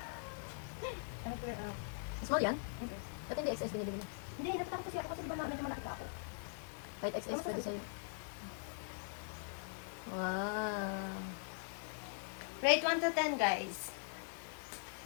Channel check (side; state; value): right; silent; digital silence